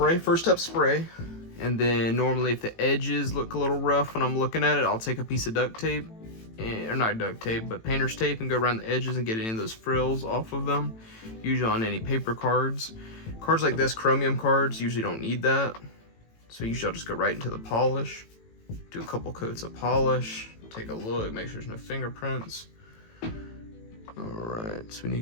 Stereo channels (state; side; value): late; right; 18 ms